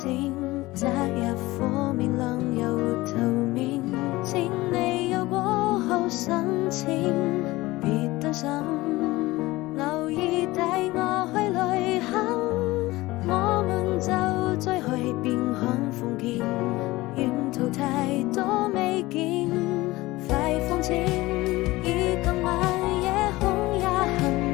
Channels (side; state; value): right; quieter; 19.5 dB